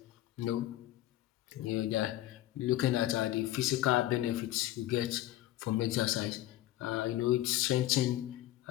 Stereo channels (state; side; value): quieter; right; 14.9 dB